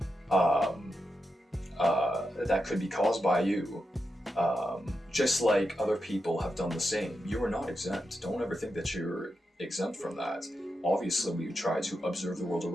that could be caused by you. Just like other people have done the same. You are not exempt. Don't ever think that you're exempt from that. Obviously, we try to observe the world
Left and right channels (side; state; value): both; normal; correlation 0.87